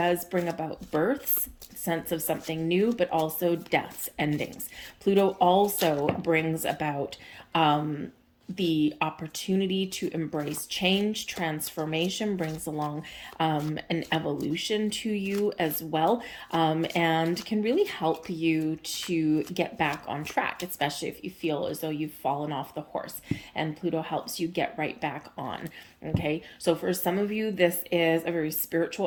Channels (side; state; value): both; identical; correlation 1.00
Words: bring about births, sense of something new, but also deaths, endings. Pluto also brings about the opportunity to embrace change. Transformation brings along an evolution to you as well, and can really help you to get back on track, especially if you feel as though you've fallen off the horse, and Pluto helps you get right back on. Okay, so for some of you, this is a very